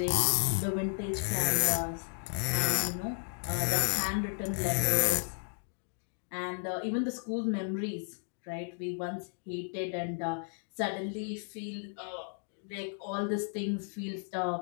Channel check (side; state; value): right; silent; 55 dB below the other